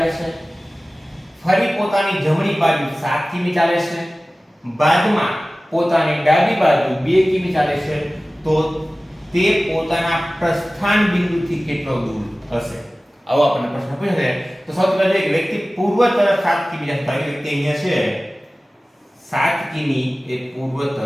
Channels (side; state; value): both; normal; correlation 0.97